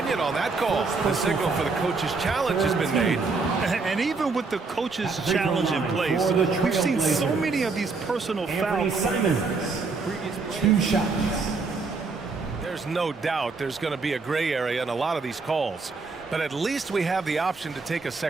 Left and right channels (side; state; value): left; quieter; 4.3 dB